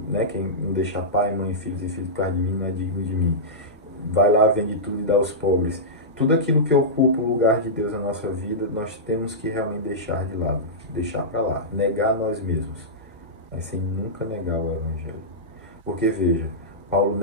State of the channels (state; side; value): normal; both; correlation -0.14